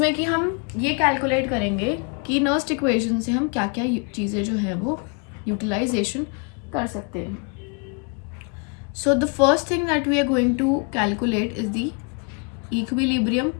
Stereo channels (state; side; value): quieter; right; 35.5 dB